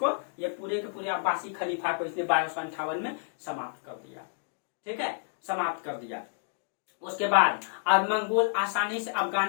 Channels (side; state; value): right; silent; digital silence